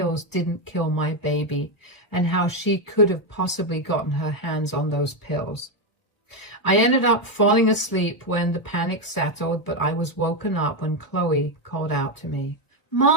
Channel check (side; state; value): right; late; 1.2 ms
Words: didn't kill my baby, and how she could have possibly gotten her hands on those pills. I ended up falling asleep when the panic settled, but I was woken up when Chloe called out to me.